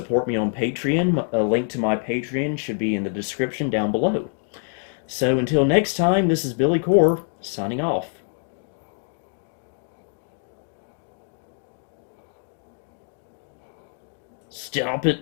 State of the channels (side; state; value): right; silent; 62 dB below the other